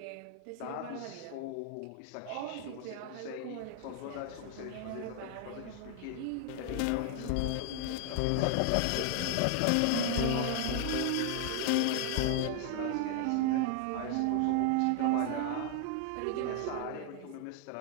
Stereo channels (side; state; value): both; different; correlation 0.00